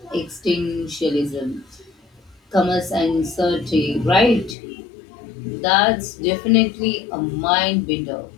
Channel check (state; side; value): drops out; right; at 4.5 s